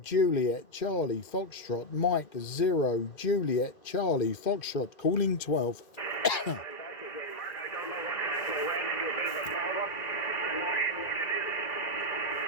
Juliet Charlie Foxtrot, Mike 0 Juliet Charlie Foxtrot, calling 12.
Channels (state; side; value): late; right; 2.1 ms